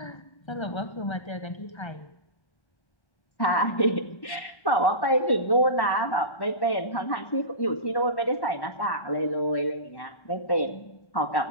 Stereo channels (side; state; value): right; late; 1.3 ms